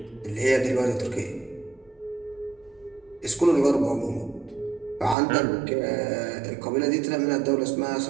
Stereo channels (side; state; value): left; drops out; at 5.2 s